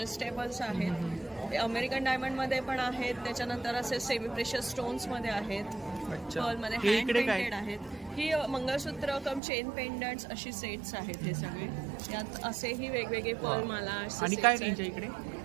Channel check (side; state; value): left; drops out; at 9.4 s